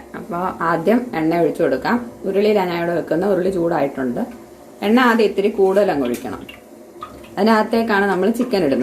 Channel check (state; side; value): identical; both; correlation 1.00